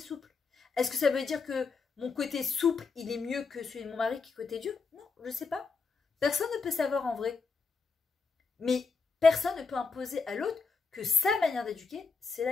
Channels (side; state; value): right; quieter; 4.7 dB